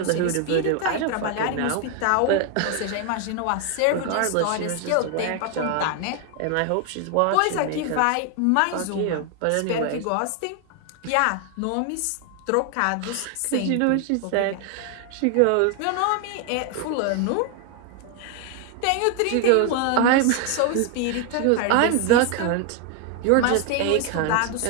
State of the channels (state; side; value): different; both; correlation 0.00